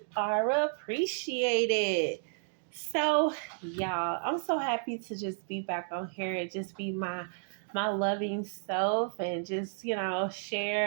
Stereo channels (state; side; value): silent; left; digital silence